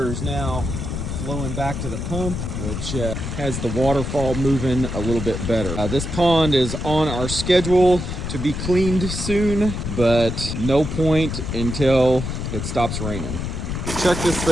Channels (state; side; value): noise; left; rumble, 4 dB below the sound